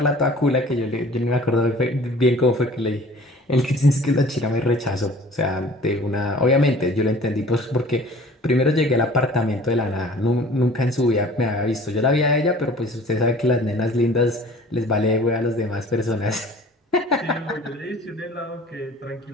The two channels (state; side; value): normal; both; correlation 0.48